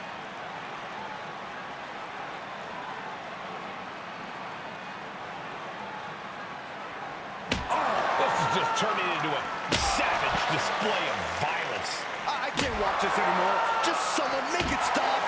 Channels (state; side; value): identical; both; correlation 1.00